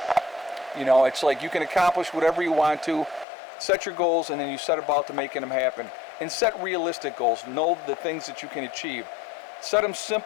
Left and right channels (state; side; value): drops out; right; at 3.2 s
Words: You know, it's like you can accomplish whatever you want to. Set your goals, and then you set about to making them happen. And set realistic goals. Know the things that you can achieve. Set them